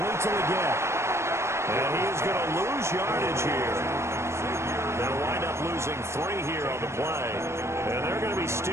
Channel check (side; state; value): left; late; 0.13 ms